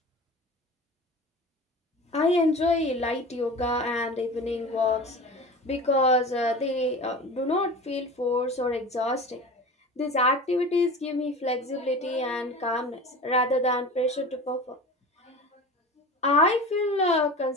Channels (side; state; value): both; normal; correlation 0.34